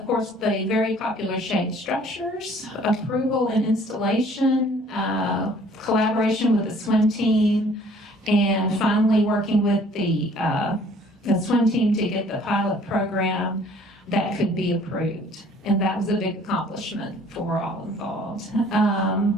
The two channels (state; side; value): normal; both; correlation 0.56